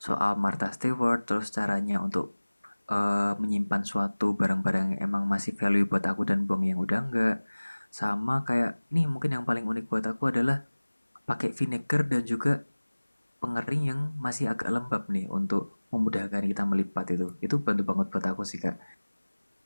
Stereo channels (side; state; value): both; inverted; correlation -1.00